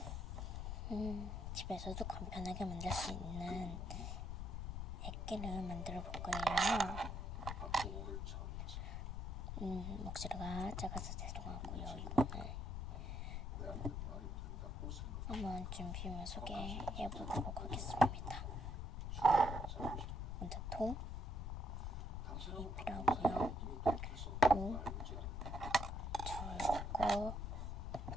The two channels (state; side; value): noise; left; rumble, 3 dB below the sound